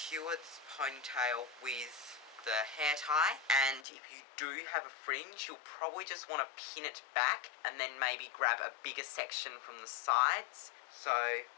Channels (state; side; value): drops out; right; at 3.9 s